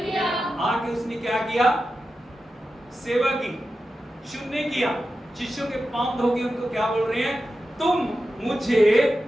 आके उसने क्या किया, सेवा की, सुनने किया, शिष्यों के पांव धो के उनको क्या बोल रहे हैं, तुम मुझे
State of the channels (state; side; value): normal; both; correlation 0.92